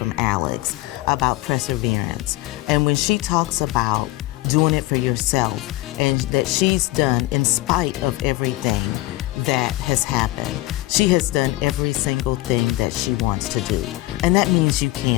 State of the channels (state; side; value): quieter; right; 18.8 dB